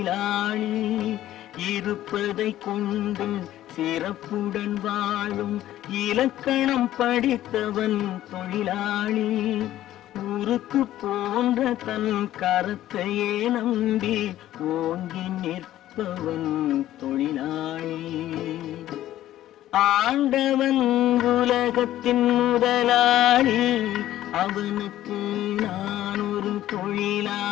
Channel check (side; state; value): right; quieter; 13.5 dB